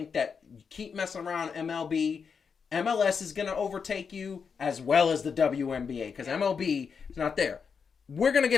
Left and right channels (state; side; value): quieter; right; 6.1 dB